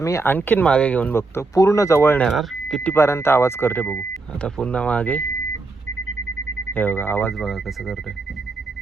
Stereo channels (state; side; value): quieter; left; 3.7 dB